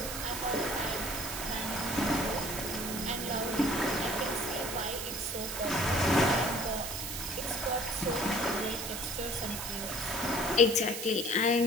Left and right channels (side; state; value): right; noise; hiss, 5 dB below the sound